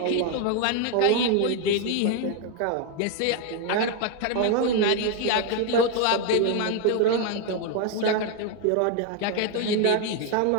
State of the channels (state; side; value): different; both; correlation 0.01